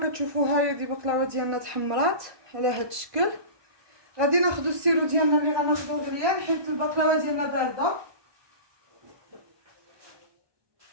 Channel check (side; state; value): left; late; 1.2 ms